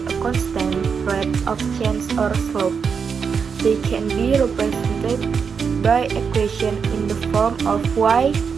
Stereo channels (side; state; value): left; quieter; 6.1 dB